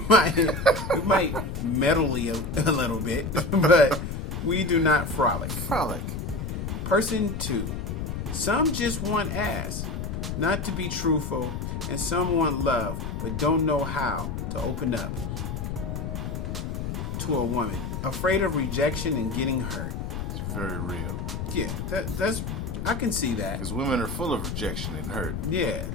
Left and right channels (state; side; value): noise; left; rumble, 4 dB below the sound